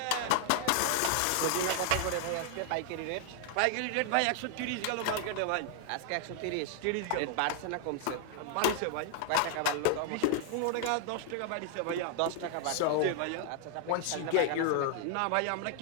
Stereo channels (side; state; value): both; different; correlation 0.00